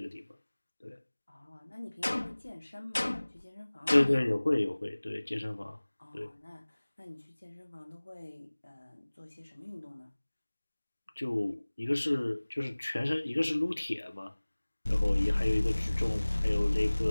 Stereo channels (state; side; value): inverted; both; correlation -1.00